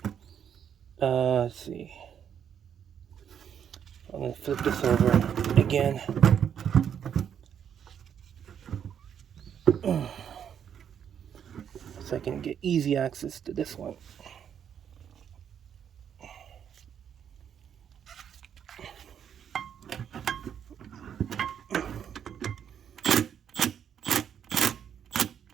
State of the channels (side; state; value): left; quieter; 8.5 dB